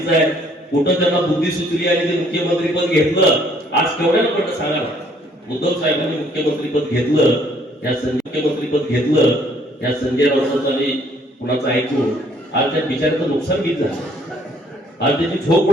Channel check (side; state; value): both; normal; correlation 0.63